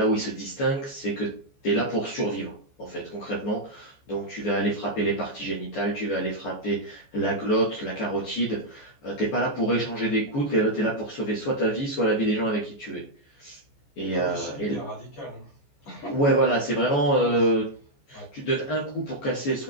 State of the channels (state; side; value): late; right; 14 ms